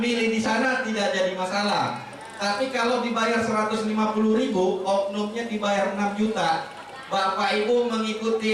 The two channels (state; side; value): identical; both; correlation 1.00